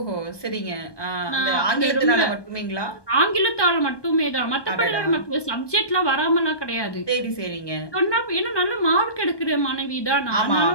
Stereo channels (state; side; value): late; right; 1.2 ms